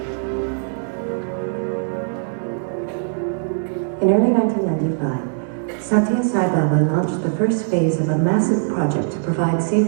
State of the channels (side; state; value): left; silent; digital silence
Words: In early 1995, Satya Sai Baba launched the first phase of a massive project to provide